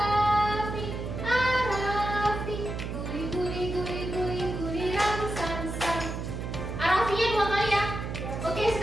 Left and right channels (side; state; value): right; noise; hum, 5 dB below the sound